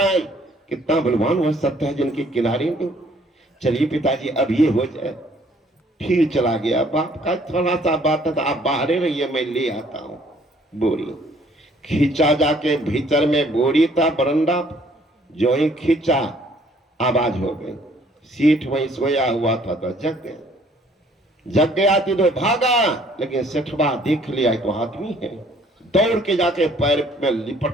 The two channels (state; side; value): normal; both; correlation 0.60